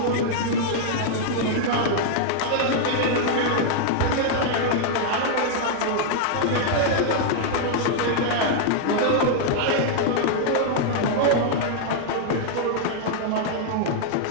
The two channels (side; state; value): both; different; correlation -0.01